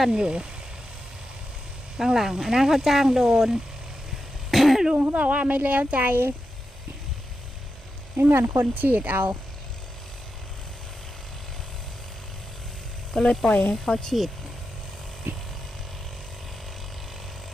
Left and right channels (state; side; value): normal; both; correlation 0.89